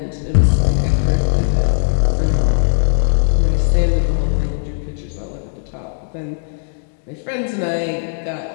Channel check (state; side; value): silent; right; digital silence